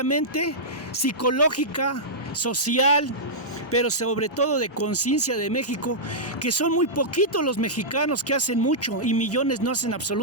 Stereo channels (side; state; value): both; normal; correlation -0.12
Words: psicológica, social, pero sobre todo de conciencia de México, que son muy poquitos los mexicanos que hacen mucho y millones no hacen